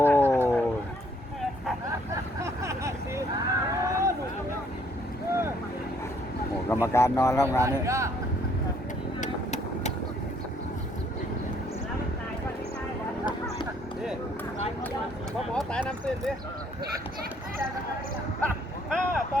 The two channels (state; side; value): normal; both; correlation 0.65